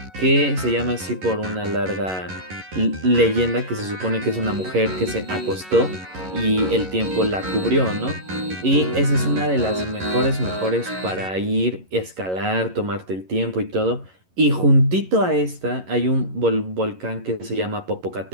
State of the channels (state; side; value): late; left; 11 ms